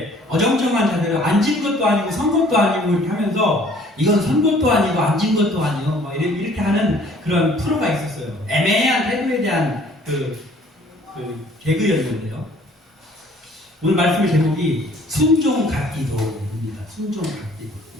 어정쩡한 자세로 앉은 것도 아니고 선 것도 아니고 이렇게 하면서 이건 선 것도 아니고 앉은 것도 아니고 뭐 이렇게 하는 그런 프로가 있었어요. 애매한 태도에 대한 그 개그였는데요. 오늘 말씀의 제목이 순종 갓기도입니다. 순종 갓기도.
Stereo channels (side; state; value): both; normal; correlation 0.56